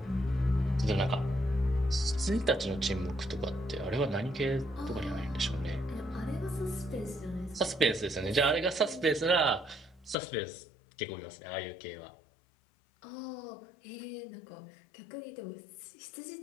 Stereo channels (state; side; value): drops out; right; at 10.2 s